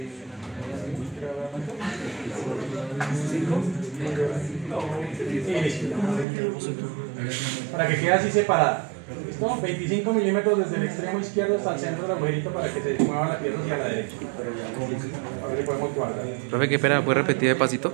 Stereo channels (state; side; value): drops out; left; at 6.2 s